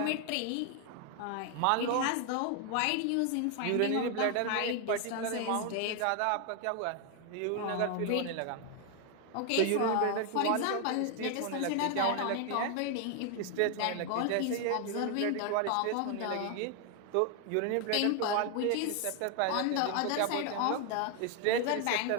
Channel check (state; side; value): different; both; correlation 0.01